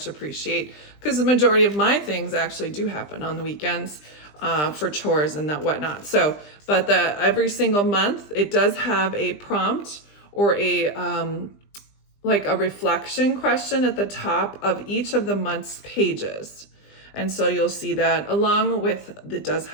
appreciate, because the majority of my things actually do happen on the weekends for chores and that whatnot. So, but every single month it does have a prompt or a like a reflection question at the top of each of the month's pages. And so you'll see that along with, it does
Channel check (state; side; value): late; right; 20 ms